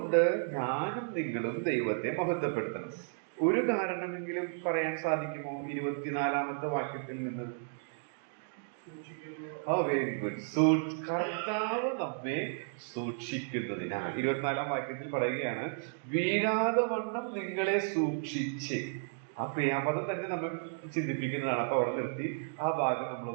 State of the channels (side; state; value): left; silent; digital silence